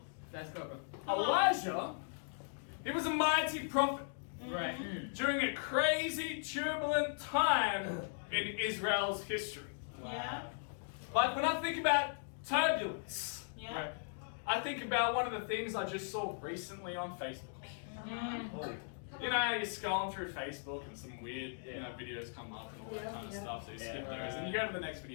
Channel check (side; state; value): right; silent; digital silence